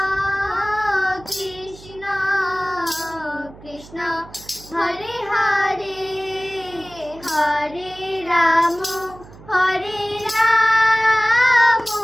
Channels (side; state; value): right; noise; hum, 20 dB below the sound